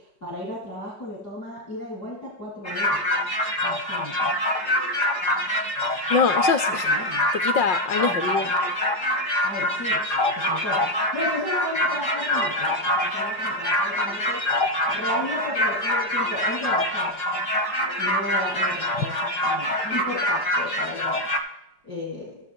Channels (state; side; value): late; right; 5.0 ms